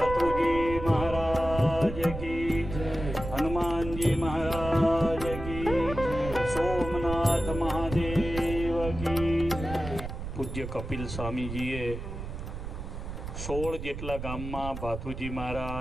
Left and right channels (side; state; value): right; noise; rumble, 8 dB below the sound